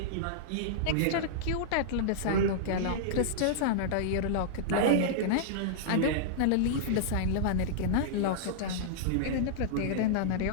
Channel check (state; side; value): different; both; correlation -0.02